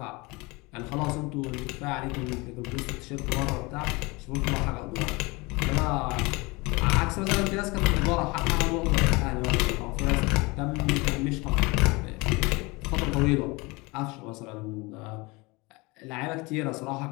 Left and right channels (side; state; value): right; quieter; 25.1 dB